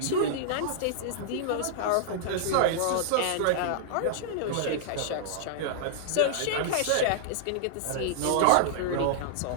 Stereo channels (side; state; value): both; different; correlation -0.01